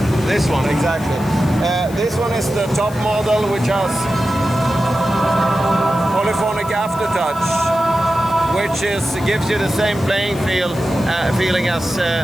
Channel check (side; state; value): left; noise; hiss, 19 dB below the sound